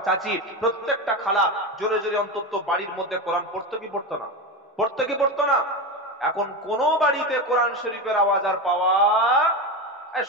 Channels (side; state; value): both; normal; correlation 0.18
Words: চাচি, প্রত্যেকটা খালা জোরে জোরে অন্তত বাড়ির মধ্যে কোরআন পড়তো কি পড়তো না? পড়তো কি পড়তো না? এখন কোন বাড়িতে কোরআন শরীফের আওয়াজ আর পাওয়া?